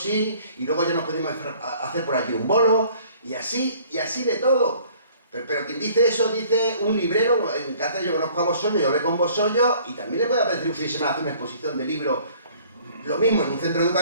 y luego ya nos podemos hacer por allí un bolo, y así de todo. Pero quien dice eso, dice un librero. En Cáceres yo conozco a Bosollo, yo hablé con Bosollo, y también le puede apetecer un fin de semana hacer una exposición de libros, lo mismo en un centro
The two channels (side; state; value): both; inverted; correlation -0.55